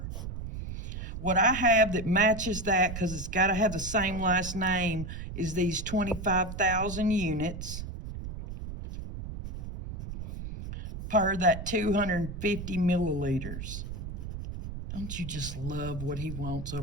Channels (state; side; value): noise; right; rumble, 8 dB below the sound